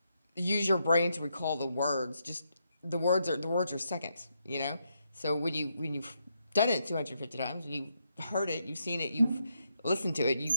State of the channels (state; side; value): inverted; both; correlation -0.80